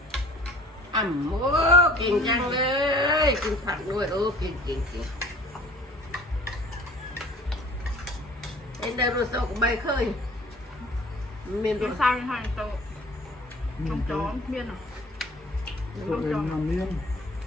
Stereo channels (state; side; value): normal; both; correlation 0.50